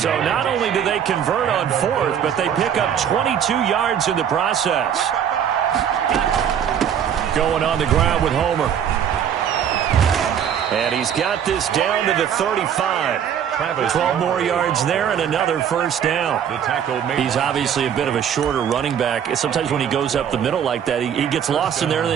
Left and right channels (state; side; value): quieter; left; 8.8 dB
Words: yards. not only do they convert on 4th, but they pick up 22 yards in the process. Going on the ground with Homer. And he's got this down to the 35. 12 more yards there and another 1st down. He's obviously a bit of a shorter running back. Sometimes when he goes up the middle like that, he gets lost in there and